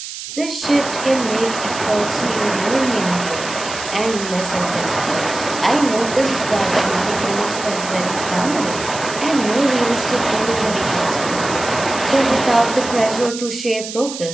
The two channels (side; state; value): right; noise; hiss, 9 dB below the sound